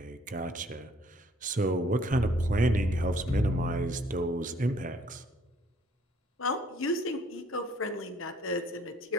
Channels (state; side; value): normal; both; correlation 0.61